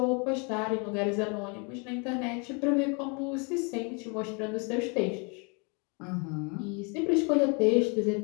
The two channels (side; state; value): right; quieter; 33.5 dB